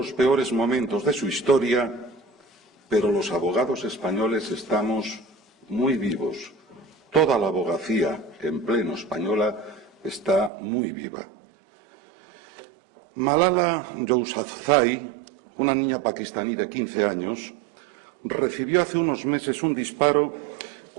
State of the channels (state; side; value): drops out; left; at 10.5 s